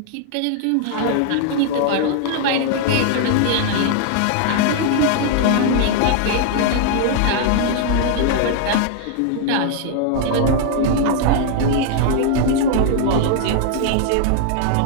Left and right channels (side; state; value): both; different; correlation 0.00